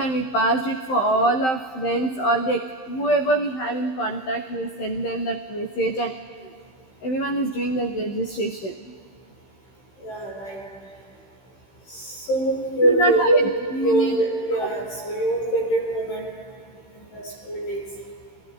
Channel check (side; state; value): right; late; 15 ms